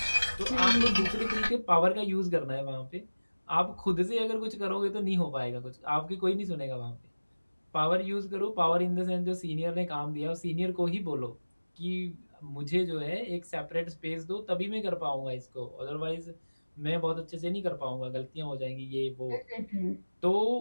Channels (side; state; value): both; inverted; correlation -1.00